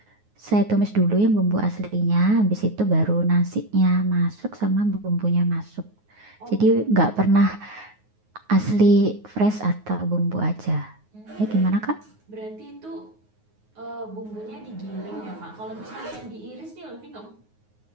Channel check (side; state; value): left; late; 9.4 ms